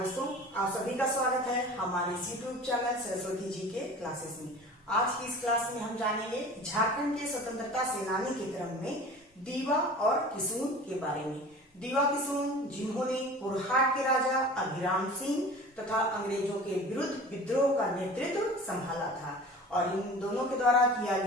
आप सभी का स्वागत है हमारे यूट्यूब चैनल सरस्वती जी के क्लासेस में। आज की इस क्लास में हम जानेंगे झारखंड के स्वतंत्रता सेनानी के क्रम में दीवा और किशुन के बारे में। दीवा किशुन जिन्होंने पुरहाट के राजा अभिराम सिंह तथा अंग्रेजों के विरुद्ध विद्रोह का नेतृत्व संभाला था और इन दोनों के द्वारा किया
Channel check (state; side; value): normal; both; correlation 0.40